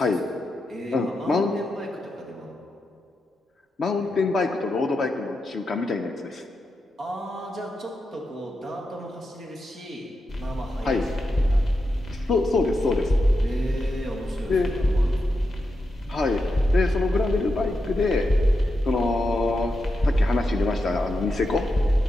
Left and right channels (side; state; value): both; normal; correlation 0.87